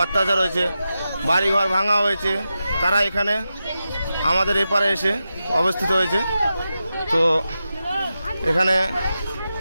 অত্যাচার হয়েছে, বাড়িঘর ভাঙা হয়েছে, তারা এখানে আমাদের এপারে এসে অবস্থিত হয়েছে। তো এখানে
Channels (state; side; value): inverted; both; correlation -0.90